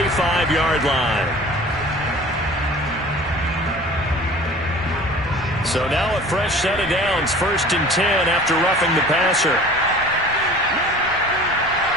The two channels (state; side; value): normal; both; correlation 0.44